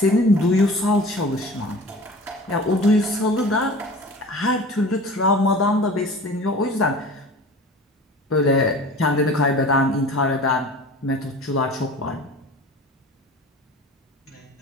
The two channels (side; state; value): both; normal; correlation 0.40